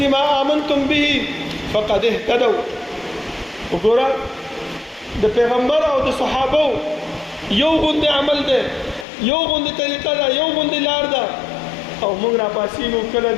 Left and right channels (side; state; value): right; drops out; at 9.1 s